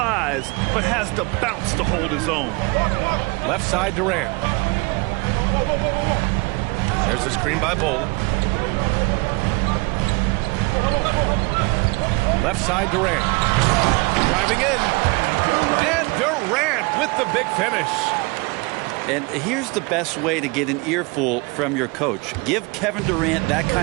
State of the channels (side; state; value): left; quieter; 27.3 dB